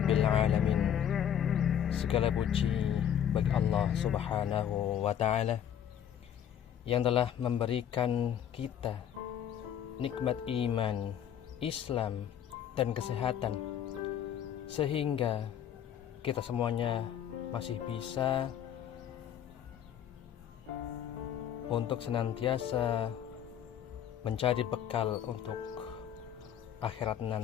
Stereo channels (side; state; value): right; quieter; 9.5 dB